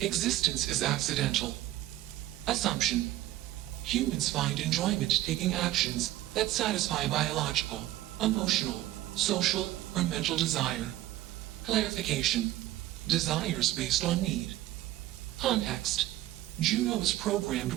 Existence is accidental. Assumption. Humans find enjoyment taking actions that satisfy biological, emotional, social, or mental desire. Clarification. Desires based on need. Context. Juno is programmed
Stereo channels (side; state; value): left; quieter; 15.2 dB